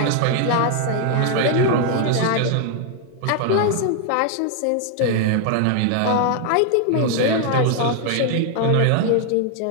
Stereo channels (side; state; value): both; different; correlation 0.00